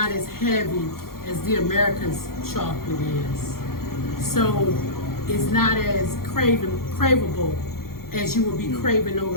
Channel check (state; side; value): late; right; 0.92 ms